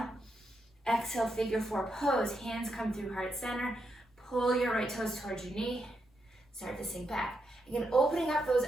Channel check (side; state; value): both; normal; correlation 0.82